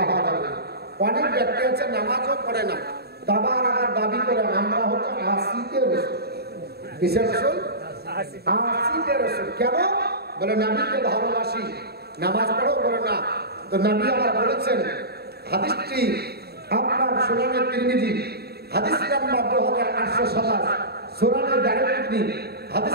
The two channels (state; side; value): late; left; 0.46 ms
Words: হওয়া যাবে। অনেক ব্যক্তি আছে নামাজও পড়ে না, দাবার আবার দাবি করে আমরা হচ্ছে আশিকে রসুল। কিসের রসুল? আশিকে রসুল। কেন? বলে নবীকে ভালোবাসি, নামাজ পড়ো। বলে না। তো নবী আবার বলেছেন, হাদিসটি আপনার সুনানে তিরমিজি, হাদিস নাম্বার 2827, সুনানে দারকুতনি